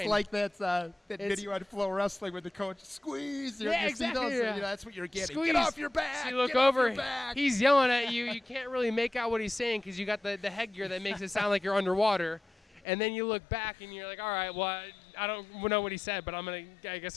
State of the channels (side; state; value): right; drops out; at 12.8 s